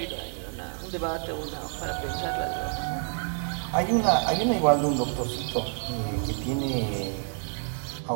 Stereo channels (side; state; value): left; silent; 56 dB below the other